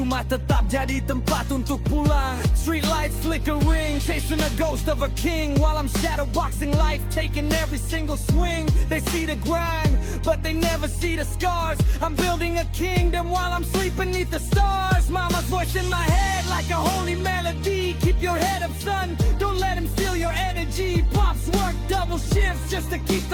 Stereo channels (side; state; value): both; identical; correlation 1.00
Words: tetap jadi tempat untuk pulang. Street lights flickering, chasing a ghost of a king, while I'm shadowboxing life, taking every single swing. They see the grind, but they never see the scars. I'm building a kingdom while I'm sleeping beneath the stars. Mama's voice in my head like a holy melody. Keep your head up, son, don't let him steal your energy. Pops work double shifts just to keep